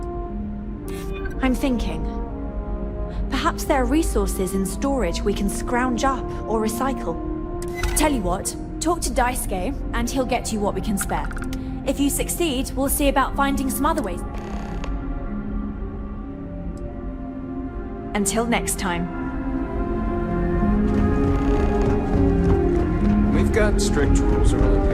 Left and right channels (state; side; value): identical; both; correlation 1.00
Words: I'm thinking... Perhaps there are resources in storage we can scrounge up or recycle. Tell you what, talk to Daisuke, and he'll get you what we can spare. If you succeed, we'll see about finding some other ways. Until next time. We've got strict rules around